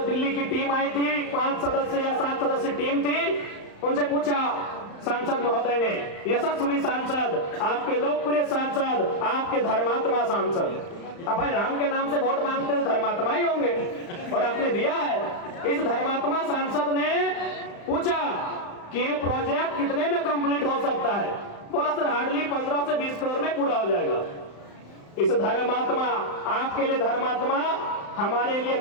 दिल्ली की टीम आई थी, 5 सदस्य या 7 सदस्य टीम थी, उनसे पूछा सांसद महोदय ने, यशस्वी सांसद, आपके लोकप्रिय सांसद, आपके धर्मात्मा सांसद, अब भाई राम के नाम से वोट मांगते तो धर्मात्मा ही होंगे, और आपने दिया है। इस धर्मात्मा सांसद ने पूछा कि ये प्रोजेक्ट कितने में कंप्लीट हो सकता है? बोला सर हार्डली 15 से 20 करोड़ में पूरा हो जाएगा। इस धर्मात्मा, आपके लिए धर्मात्मा, हमारे लिए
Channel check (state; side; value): late; right; 35 ms